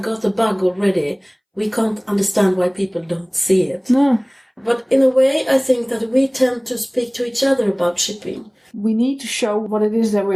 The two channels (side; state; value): both; identical; correlation 1.00